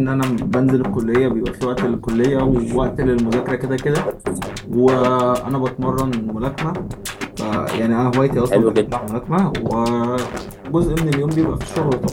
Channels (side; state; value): both; identical; correlation 1.00